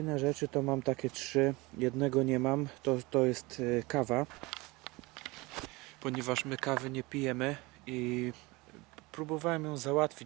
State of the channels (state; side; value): quieter; left; 23.5 dB